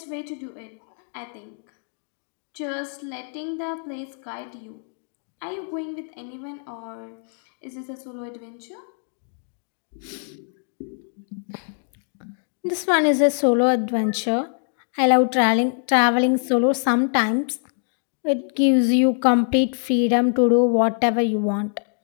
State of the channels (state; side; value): silent; right; 56 dB below the other